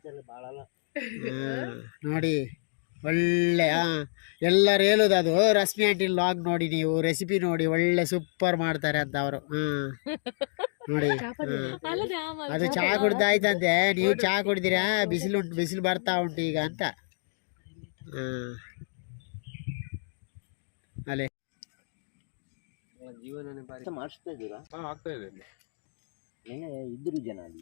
ನೋಡಿ ಒಳ್ಳೆ ಎಲ್ಲರೂ ಹೇಳುದು ಅದು ರಶ್ಮಿ ಆಂಟಿ ಲಾಗ್ ನೋಡಿ ನೀವು ರೆಸಿಪಿ ನೋಡಿ ಒಳ್ಳೆ ಸೂಪರ್ ಮಾಡ್ತಾರೆ ಅಂತ ಅವರು ನೋಡಿ ಅದು ಚಾ ಕುಡ್ದಾಯ್ತಂತೆ ನೀವು ಚಾ ಕುಡ್ದಿರಾ ಬಿಸಿಲು ಬರ್ತಾ ಉಂಟು ಈಗ ಅಂತ ಅಲೆ ಜೀವನ ಮಾಡಿಸ್ತಾ ಇದ್ದೀರಾ? ಆಗ್ತಾ ಇದೆ. ನಿನ್ನೆ ಇದ್ರು ಜನ ಅಲ್ಲಿ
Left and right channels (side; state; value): right; silent; digital silence